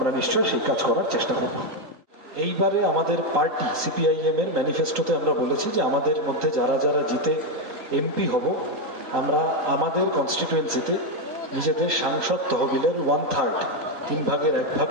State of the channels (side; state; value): left; late; 3.9 ms